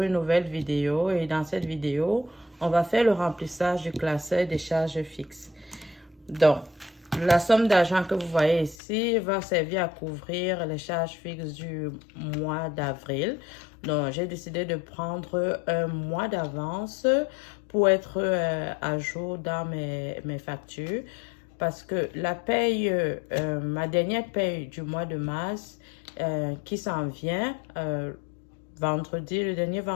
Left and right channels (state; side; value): drops out; right; at 8.8 s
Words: nouvelle vidéo et dans cette vidéo, on va faire le remplissage du classeur des charges fixes. Donc, la somme d'argent que vous voyez ici va servir à couvrir les charges fixes du mois d'avril. Donc, j'ai décidé de prendre un mois d'avance pour être à jour dans mes factures. Parce que la paye, ma dernière paye du mois de mars qui s'en vient, vendredi, le dernier